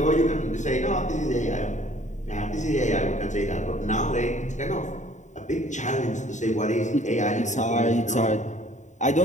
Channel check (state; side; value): late; right; 0.35 ms